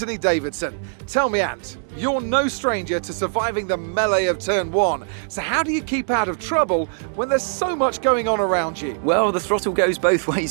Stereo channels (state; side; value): silent; left; digital silence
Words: Davidson. Tell me, Ant, you're no stranger to surviving the melee of turn one. So how do you keep out of trouble when there's so much going on around you? Well, the throttle goes both